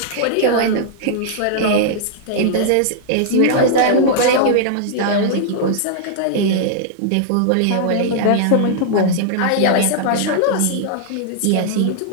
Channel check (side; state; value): both; different; correlation -0.01